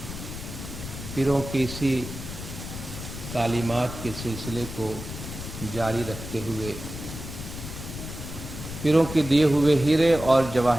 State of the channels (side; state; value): left; noise; rumble, 9 dB below the sound